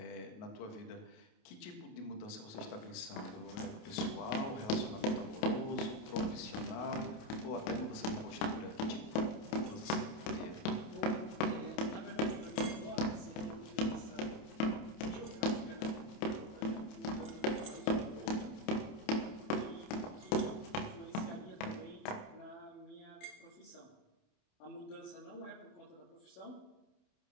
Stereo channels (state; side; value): late; right; 28 ms